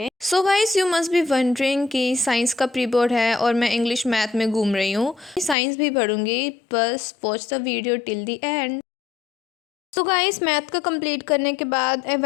So guys, you must be wondering कि साइंस का प्री बोर्ड है और मैं इंग्लिश मैथ में घूम रही हूँ। साइंस भी पढ़ूंगी, बस watch the video till the end. So guys, math का कंप्लीट करने के बाद I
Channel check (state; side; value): drops out; right; at 5.6 s